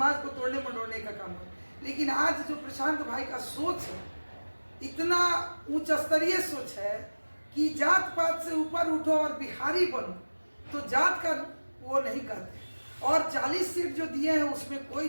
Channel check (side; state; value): both; inverted; correlation -1.00